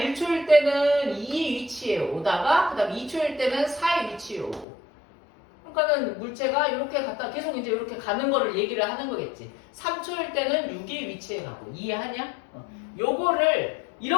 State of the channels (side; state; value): right; drops out; at 4.7 s